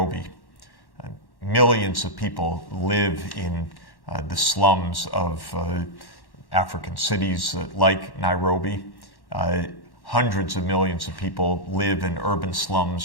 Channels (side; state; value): right; late; 1.1 ms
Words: Millions of people live in the slums of African cities like Nairobi. Hundreds of millions of people live in urban